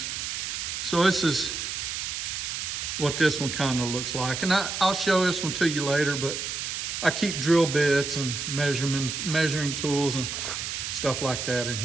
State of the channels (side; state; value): right; noise; hiss, 4 dB below the sound